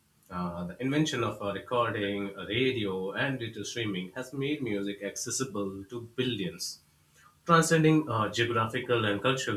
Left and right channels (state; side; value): identical; both; correlation 1.00